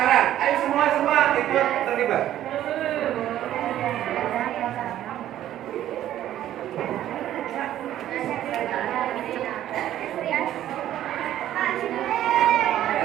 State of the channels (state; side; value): quieter; left; 12.4 dB